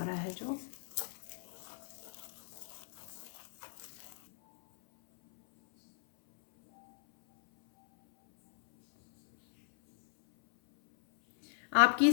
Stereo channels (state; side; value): silent; right; 54 dB below the other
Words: रहा है जो आपकी